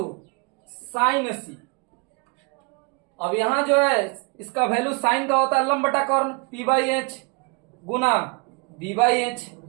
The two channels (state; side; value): quieter; left; 31.2 dB